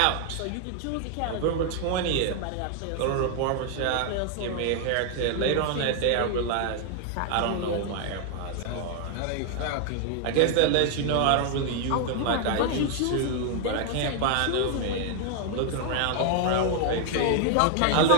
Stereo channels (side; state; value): both; different; correlation 0.00